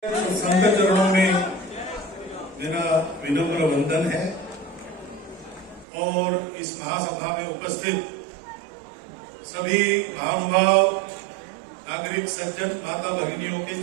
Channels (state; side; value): drops out; left; at 5.9 s